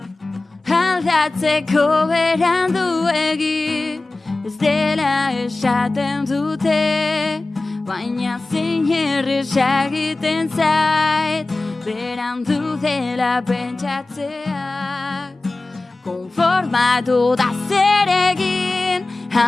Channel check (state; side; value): quieter; right; 3.1 dB